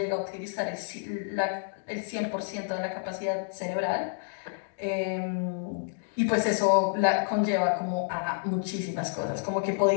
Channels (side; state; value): right; silent; 58 dB below the other